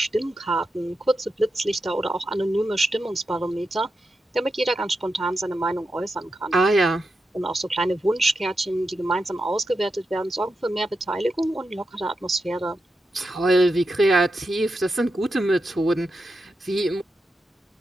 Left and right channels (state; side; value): normal; both; correlation 0.88